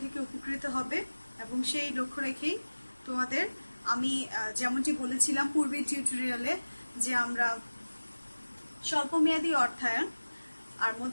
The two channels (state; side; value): inverted; both; correlation -1.00